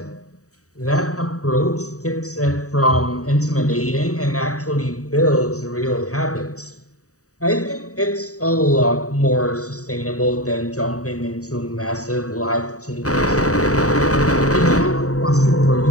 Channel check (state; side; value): late; right; 0.66 ms